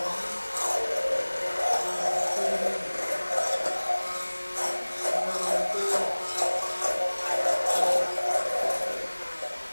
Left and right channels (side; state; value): both; inverted; correlation -1.00